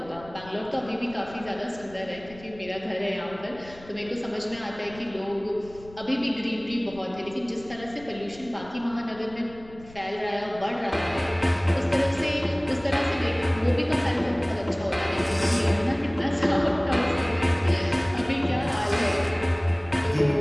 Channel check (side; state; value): left; noise; rumble, 21 dB below the sound